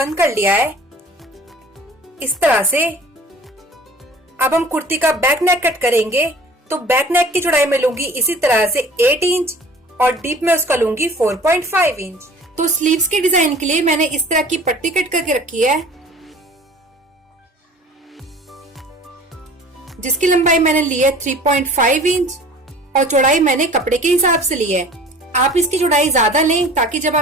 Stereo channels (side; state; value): both; normal; correlation 0.46